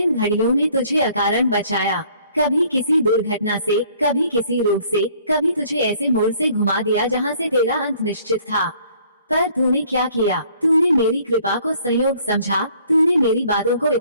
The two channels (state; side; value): inverted; both; correlation -0.59